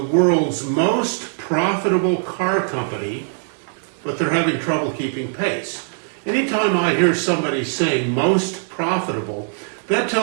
most profitable car company, but they're having trouble keeping pace. Anytime I hear somebody saying most profitable, that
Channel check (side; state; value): left; silent; digital silence